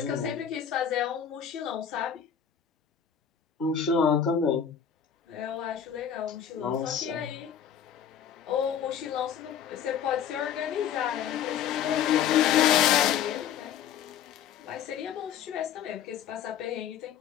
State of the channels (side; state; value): right; quieter; 8.7 dB